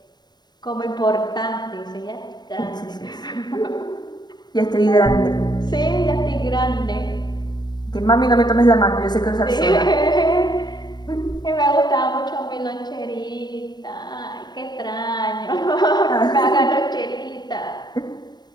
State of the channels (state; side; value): late; right; 0.21 ms